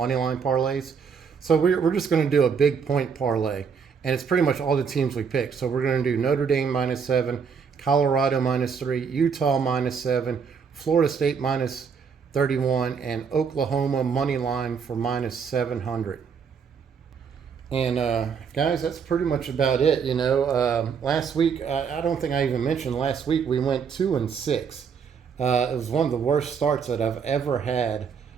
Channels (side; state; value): left; quieter; 6.3 dB